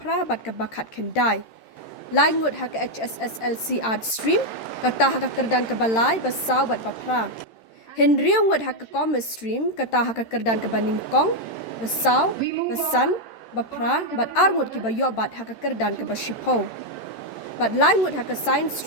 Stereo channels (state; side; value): late; right; 13 ms